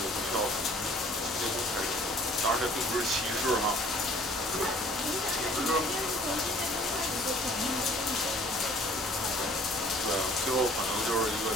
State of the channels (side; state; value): both; normal; correlation 0.53